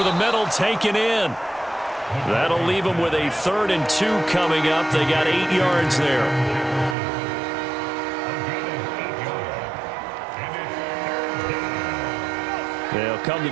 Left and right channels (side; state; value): left; drops out; at 7.0 s